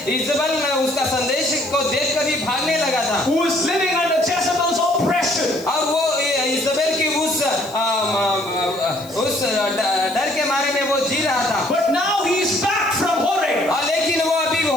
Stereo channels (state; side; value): noise; left; hiss, 21 dB below the sound